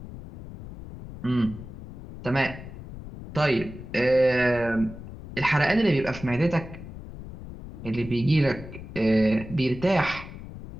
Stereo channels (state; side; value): noise; left; rumble, 13 dB below the sound